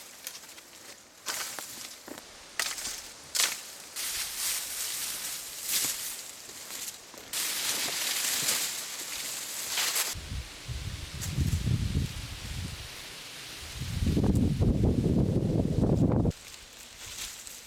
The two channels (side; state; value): both; identical; correlation 1.00